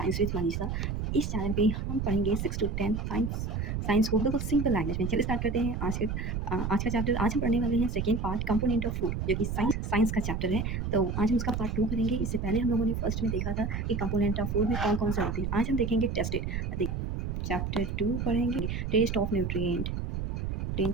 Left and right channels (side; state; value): right; noise; rumble, 2 dB below the sound